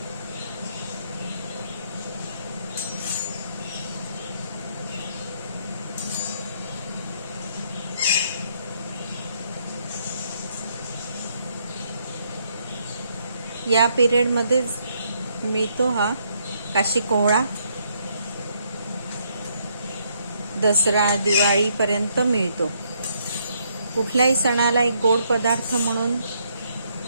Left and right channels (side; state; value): both; inverted; correlation -0.72